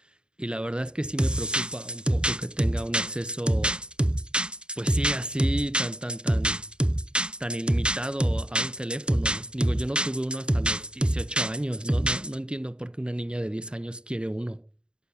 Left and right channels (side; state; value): left; late; 0.050 ms